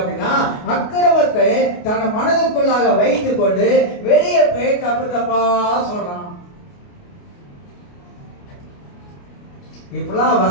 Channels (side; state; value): right; late; 28 ms